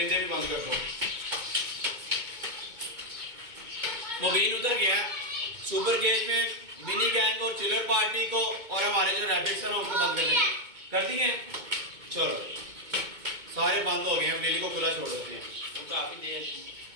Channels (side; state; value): left; late; 2.2 ms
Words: भी बंद कर दो। मुबीन उधर गया सुपर गेज में मिनी गैंग और चिलर पार्टी को और हमारे जो रैबिट्स हैं उनको बंद कर देंगे। कर दिए? चलो सारे बंद हो गए हैं। लिली को खुला छोड़ देते हैं।